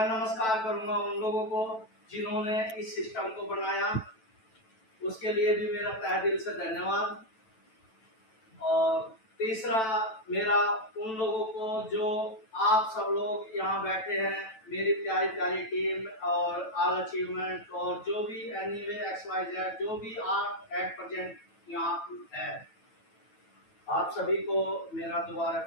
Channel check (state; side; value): late; right; 9.1 ms